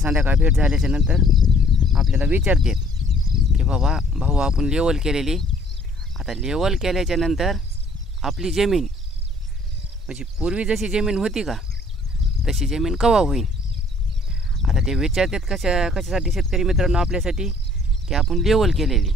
भेट झाल्याच्या नंतर आपल्याला विचारतात की बाबा भाऊ आपण लेवल केलेली, आता लेवल केल्याच्या नंतर आपली जमीन म्हणजे पूर्वी जशी जमीन होती का तशी जमीन कवा होईल. आता ते विचारतात कशासाठी शेतकरी मित्रांनो आपल्यासाठी की आपण लेवल केलेली.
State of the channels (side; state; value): both; normal; correlation 0.59